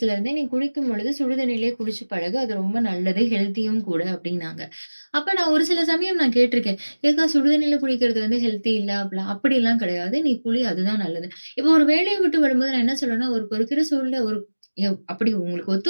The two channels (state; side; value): inverted; both; correlation -1.00